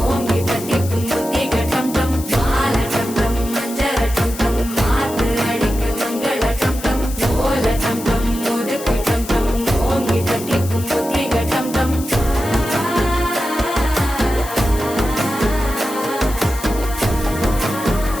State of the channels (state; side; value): noise; left; hiss, 13 dB below the sound